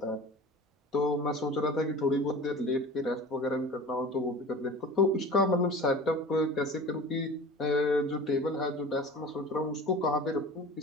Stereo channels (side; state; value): both; normal; correlation 0.38